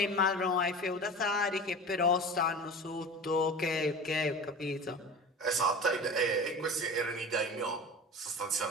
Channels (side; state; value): both; normal; correlation 0.34